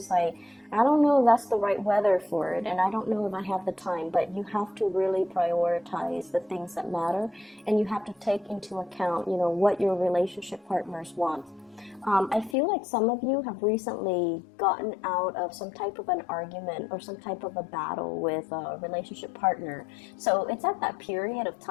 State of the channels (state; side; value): drops out; right; at 12.6 s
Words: like, I don't know if that's the right weather for it, and I don't know if I have the time. But you have to really prioritize the things that matter, and you have to take into account, you know, what your relationship partners want. I feel like some of you have recently gotten out of some type of an argument or some type of a battle with a relationship partner. So it's at that period of